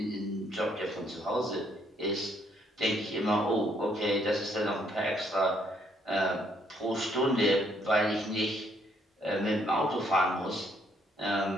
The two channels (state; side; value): normal; both; correlation 0.69